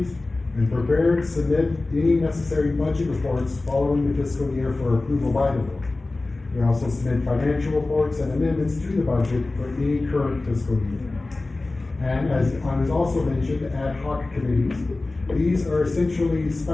and prepare and submit any necessary budget reports following the fiscal year for approval by the board. We also submit financial reports and amendments to the budget for any current fiscal year. And as I was also mentioned, ad hoc committees. These are essentially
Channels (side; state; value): right; quieter; 3.2 dB